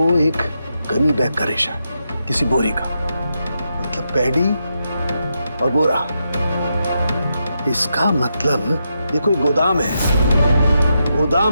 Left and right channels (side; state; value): both; inverted; correlation -0.84